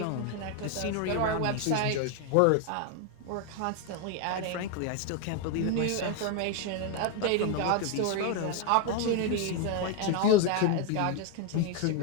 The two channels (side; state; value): both; different; correlation 0.01